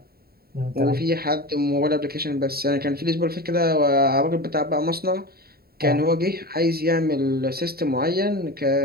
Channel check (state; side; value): late; left; 0.45 ms